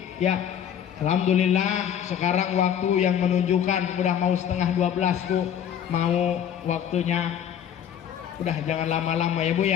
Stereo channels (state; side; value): quieter; right; 9.3 dB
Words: Ya, alhamdulillah sekarang waktu yang menunjukkan udah mau setengah 12 Bu, mau waktunya. Udah jangan lama-lama ya Bu